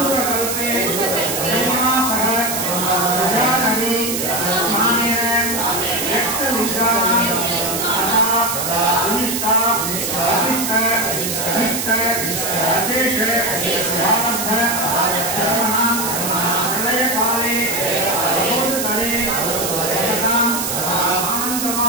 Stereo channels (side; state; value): right; noise; hiss, 2 dB below the sound